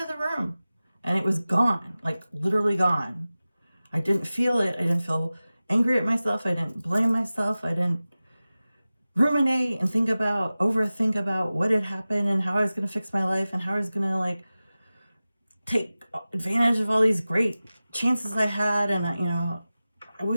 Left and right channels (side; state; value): both; inverted; correlation -0.96